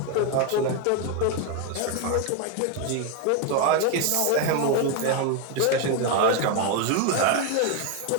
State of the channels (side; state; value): both; different; correlation 0.01